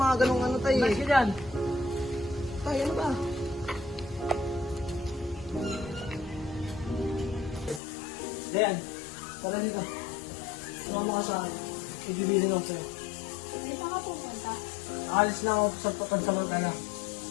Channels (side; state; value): right; drops out; at 7.8 s